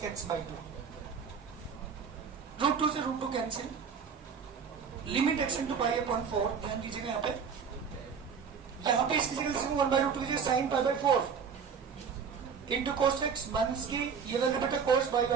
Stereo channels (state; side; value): quieter; left; 6.4 dB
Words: के x/2। √2 से √2 कैंसिल, लिमिट x इंटू π/4। ध्यान दीजिएगा यहाँ पे इसकी जगह 1/√2 की sine π/4 into cos x minus की ये वैल्यू बेटा cos